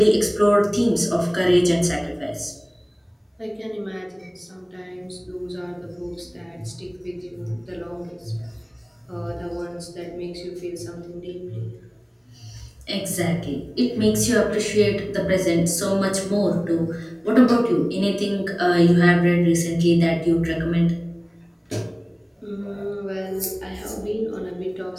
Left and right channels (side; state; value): both; identical; correlation 1.00